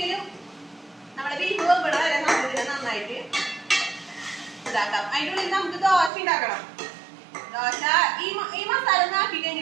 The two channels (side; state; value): left; drops out; at 6.1 s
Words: നമ്മുടെ ബീഫ് വെമ്പണ വരെ നമുക്കിതിനെ നന്നായിട്ട് ഇതാക്കാം. അതിൻ്റെ ഉള്ളിൽ നമുക്ക് ദോശ ഉണ്ടാക്കണം. ദോശ ഈ മസാല ഒന്ന് ആക്കി